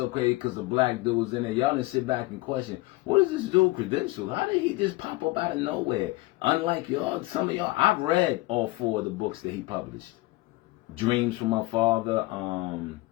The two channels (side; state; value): right; quieter; 20.8 dB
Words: crazy because a black dude was in there. Y'all didn't sit back and question, what is this dude credential? How did he just pop up out of nowhere? Unlike y'all, some of y'all, I've read all 4 of the books that he published. Dreams from My Father,